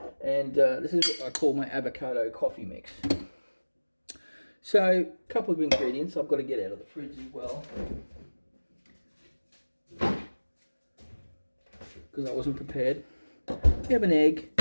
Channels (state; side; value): inverted; both; correlation -1.00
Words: And this is what I call my avocado coffee mix. So, a couple of ingredients I've got to get out of the fridge as well, because I wasn't prepared. We have an egg,